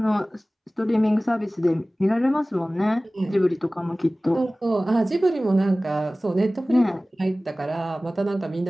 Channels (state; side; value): normal; both; correlation 0.98